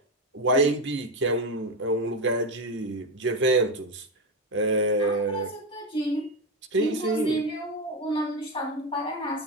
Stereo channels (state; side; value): normal; both; correlation 0.13